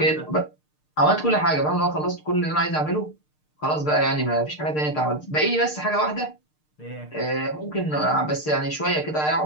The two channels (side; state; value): right; late; 6.6 ms